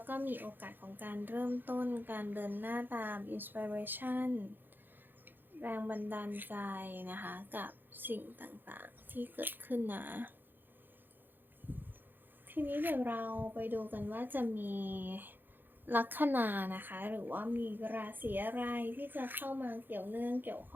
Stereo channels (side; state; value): left; late; 0.093 ms